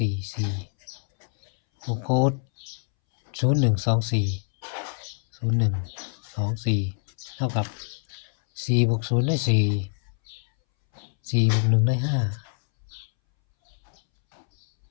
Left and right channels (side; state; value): right; silent; 61 dB below the other